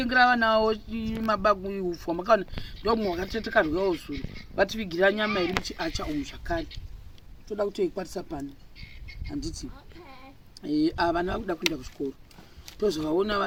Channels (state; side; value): identical; both; correlation 1.00